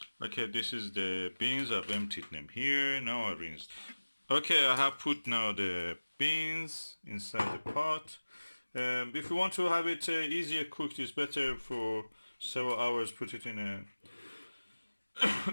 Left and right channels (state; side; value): inverted; both; correlation -1.00